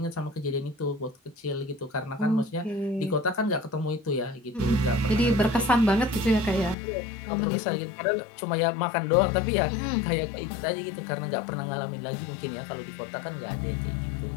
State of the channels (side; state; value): right; drops out; at 6.8 s